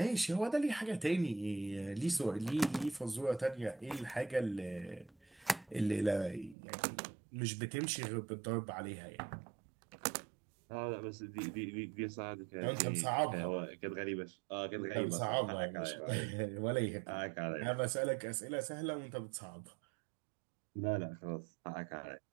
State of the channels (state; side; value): drops out; left; at 6.6 s